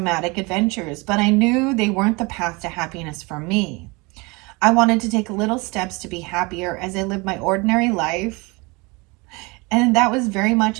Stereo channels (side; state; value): left; quieter; 26.5 dB